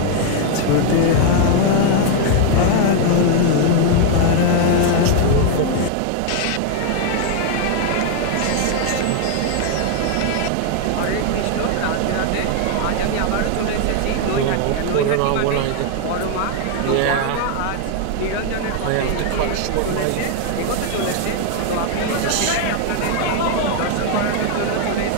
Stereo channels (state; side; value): different; both; correlation 0.00